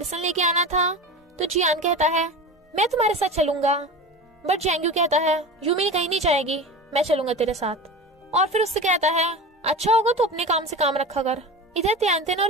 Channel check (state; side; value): normal; both; correlation 0.31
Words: लेके आना था तो जियान कहता है मैं तुम्हारे साथ चलूंगा बट जैंग्यू कहता है यूमी कहीं नहीं जाएगी, मैं चलूंगा तेरे साथ। और फिर उससे कहता है अच्छा होगा तो अपने काम से काम रखा कर। इधर त्यानतन